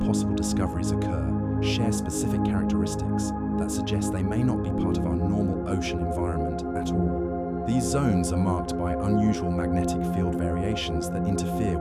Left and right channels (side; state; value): both; identical; correlation 1.00